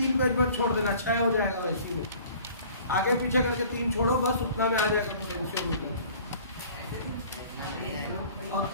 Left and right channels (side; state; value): both; inverted; correlation -0.49